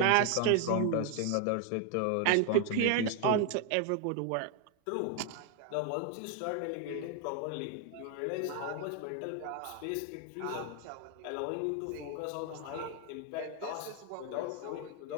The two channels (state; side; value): different; both; correlation 0.01